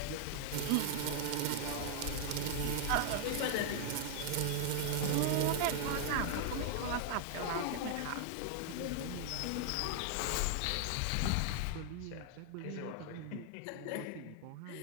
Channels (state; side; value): different; both; correlation 0.00